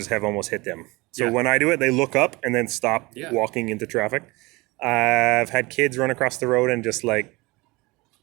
have almost hit them. So when I do it, they look up and then stop walking into traffic. I've had kids run across the road and just like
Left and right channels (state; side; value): quieter; left; 23.5 dB